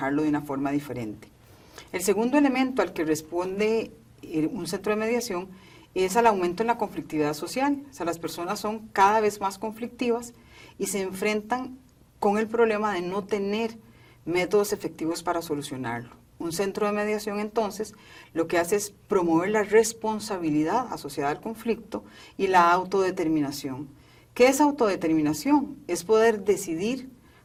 de una forma diferente. El segundo elemento al que responde un centro de mediación es al aumento en la conflictividad social. O sea, las personas son cada vez más conflictivas y se enfrentan con el problema de no tener métodos efectivos para solucionarlo. Un centro de mediación, entonces, lo que hace es promover la responsabilidad asociada al conflicto y la autodeterminación. ¿Qué es autodeterminación? Es poder decidir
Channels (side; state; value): both; identical; correlation 1.00